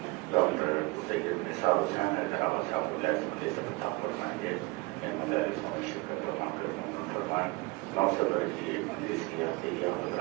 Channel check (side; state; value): left; quieter; 24.4 dB